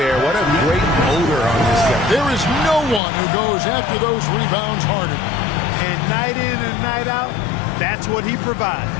What a great motor on this guy. There is no one who goes after those rebounds harder. And night in and night out, that's what he provides.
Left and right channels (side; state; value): right; drops out; at 3.0 s